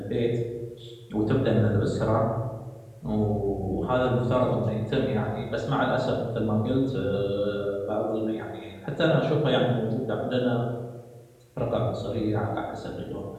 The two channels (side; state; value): both; identical; correlation 1.00